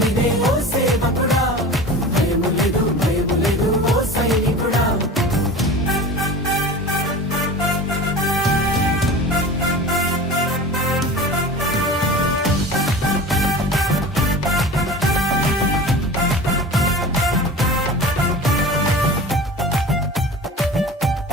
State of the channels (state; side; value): normal; both; correlation 0.35